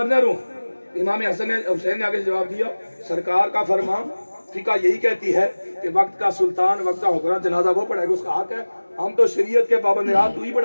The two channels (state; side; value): inverted; both; correlation -1.00